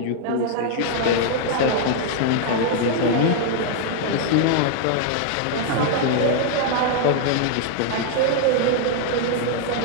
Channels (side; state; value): both; different; correlation 0.00